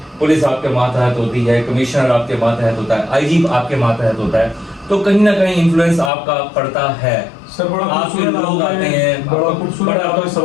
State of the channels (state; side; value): drops out; right; at 6.1 s